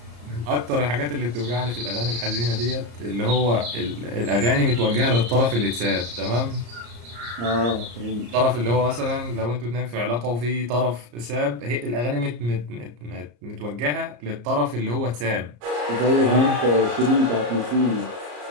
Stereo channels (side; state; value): left; late; 34 ms